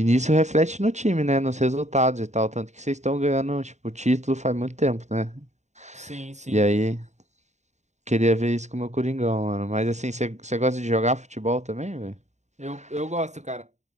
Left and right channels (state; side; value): late; left; 0.34 ms